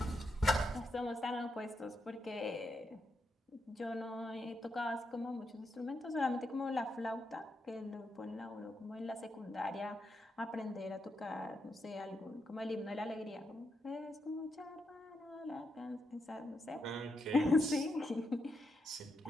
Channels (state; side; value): normal; both; correlation 0.83